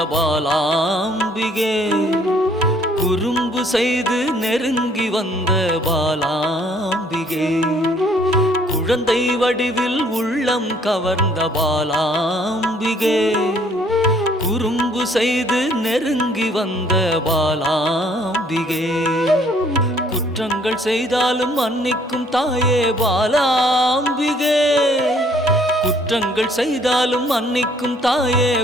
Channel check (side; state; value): both; normal; correlation 0.62